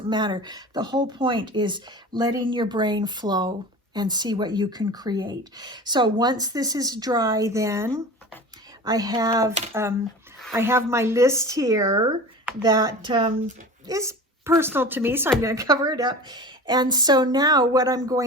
matter. The whole point is letting your brain flow and see what you can create. So once this is dry, then I have my list here that is personal to me, so I'm going to cover it up. And so now what I'm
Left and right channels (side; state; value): both; normal; correlation 0.35